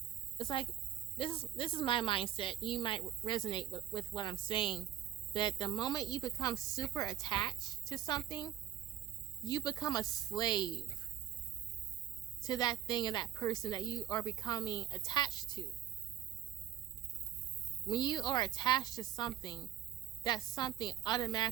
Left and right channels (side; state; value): left; quieter; 11.8 dB